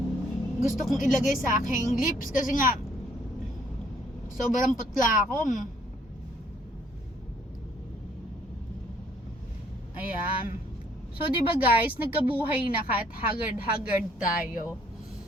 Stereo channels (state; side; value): normal; both; correlation 0.64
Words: gusto kong ilagay sa aking lips kasi nga, sobrang putla ako. Ayan. So, diba guys, nagkabuhay na kahit haggard-haggard tayo.